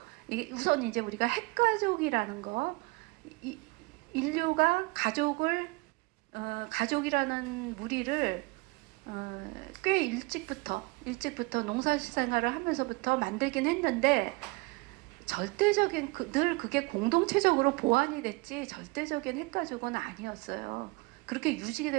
이게 우선 이제 우리가 핵가족이라는 거, 인류가 가족이라는 무리를 꽤 일찍부터 농사생활을 하면서부터 만들긴 했는데, 절대적인 늘 그게 공동체적으로 보완이 됐지 절대적인 핵가족은 아니었어요. 그렇게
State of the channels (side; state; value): left; quieter; 25.4 dB